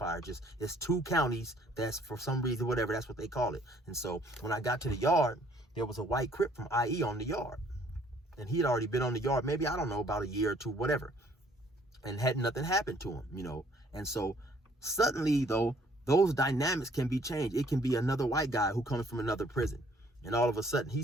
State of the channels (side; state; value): both; normal; correlation 0.61